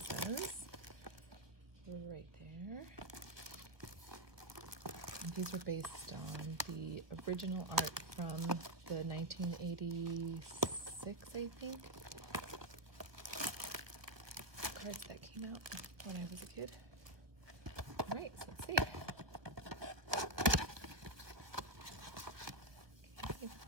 says. Right there. And these are based on the original art from the 1986, I think, cards that came out when I was a kid. All right, so let's see. Okay.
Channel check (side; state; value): left; late; 1.3 ms